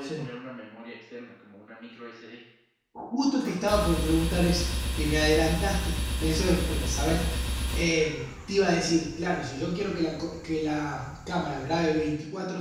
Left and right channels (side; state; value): both; identical; correlation 1.00